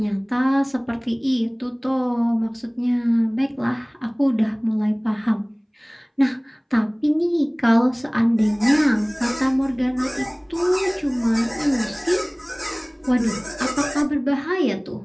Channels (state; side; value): identical; both; correlation 1.00